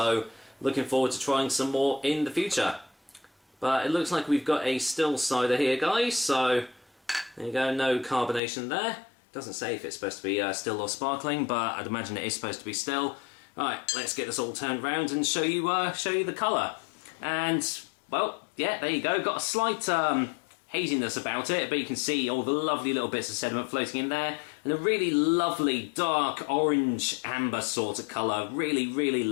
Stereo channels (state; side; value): drops out; right; at 8.4 s